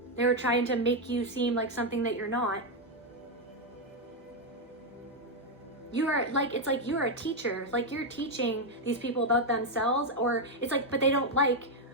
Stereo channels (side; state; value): both; normal; correlation 0.03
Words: They were trying to make you seem like something that you're not. You are like, it's like you're a teacher, like you're teaching these people about themselves, or it's like, but they don't like,